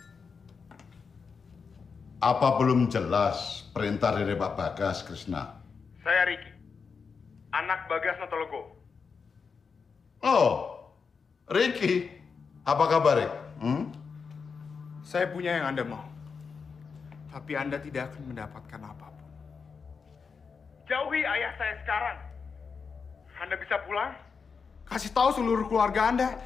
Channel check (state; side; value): quieter; right; 5.4 dB